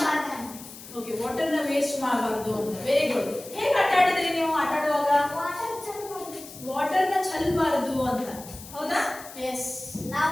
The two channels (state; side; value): noise; left; hiss, 16 dB below the sound